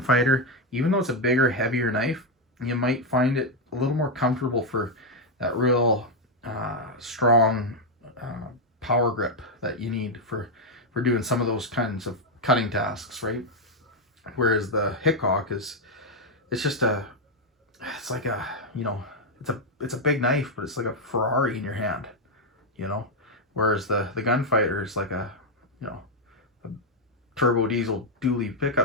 even though it's a bigger, heavier knife, you might find it a little more comfortable for that real strong power grip that you need for doing some of those kinds of cutting tasks, right? Whereas the Hickok it's like a, you know, it's a big knife, but it's like a Ferrari in your hand, you know. Whereas the Gunfighter is like a, you know, a turbo diesel dually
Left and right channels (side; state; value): both; normal; correlation 0.03